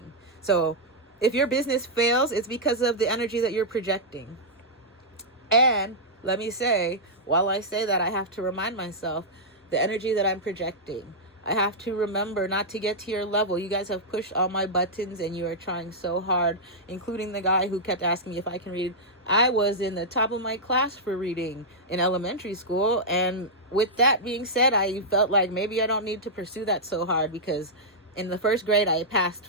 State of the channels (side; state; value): both; normal; correlation -0.08